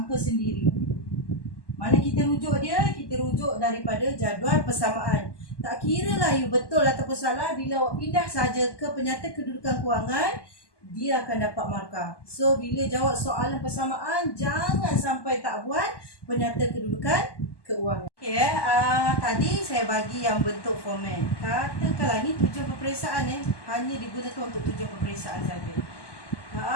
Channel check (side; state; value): right; late; 1.1 ms